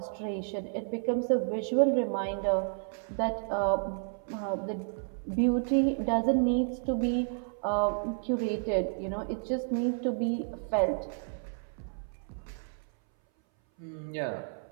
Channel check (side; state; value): left; silent; 57 dB below the other